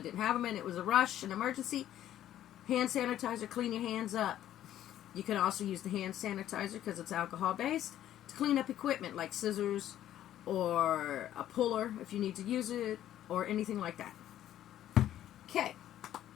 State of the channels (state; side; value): quieter; right; 12.1 dB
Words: didn't have them and it was a rush, an emergency. Hand sanitizer, clean your hands up. You can also use the hand sanitizer because it's alcohol based to clean up equipment like scissors or a puller if you need to use it or anything like that. Okay,